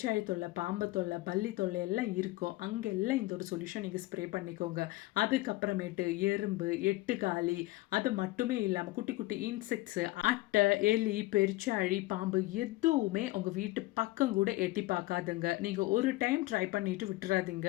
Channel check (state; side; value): quieter; right; 19.3 dB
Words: தொல்லை, பாம்பு தொல்லை, பல்லி தொல்லை எல்லாம் இருக்கும் அங்கெல்லாம் இந்த ஒரு சொல்யூஷன் நீங்கள் ஸ்ப்ரே பண்ணிக்கோங்க. அதுக்கப்புறமேட்டு எறும்பு, எட்டுக்காலி, அது மட்டுமே இல்லாமல் குட்டி குட்டி இன்செக்ட்ஸு, அட்டை, எலி, பெருச்சாழி, பாம்பு எதுவுமே உங்கள் வீட்டு பக்கம் கூட எட்டி பார்க்காதுங்க. நீங்கள் ஒரு டைம் ட்ரை பண்ணிட்டு விட்டுறாதீங்க.